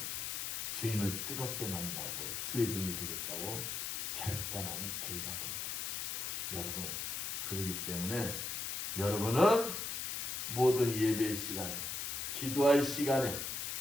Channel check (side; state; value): left; noise; hiss, 3 dB below the sound